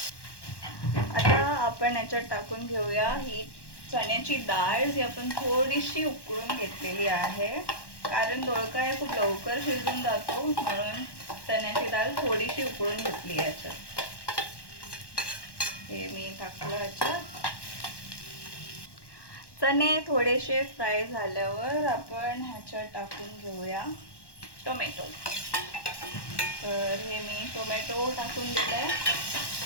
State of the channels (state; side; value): late; right; 1.1 ms